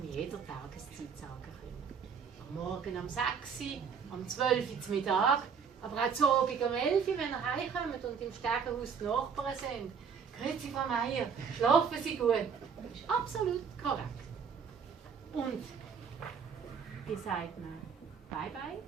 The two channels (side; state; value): left; quieter; 6.5 dB